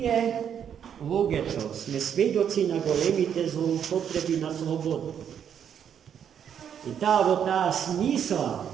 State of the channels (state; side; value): quieter; left; 8.5 dB